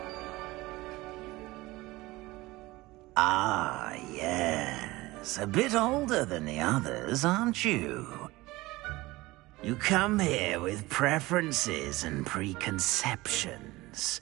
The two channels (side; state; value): left; quieter; 20.0 dB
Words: Ah, yes. A bit older than the others, aren't you? You come here with preferences and preconceptions.